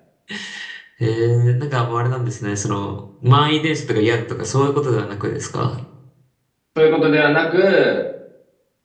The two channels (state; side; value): identical; both; correlation 1.00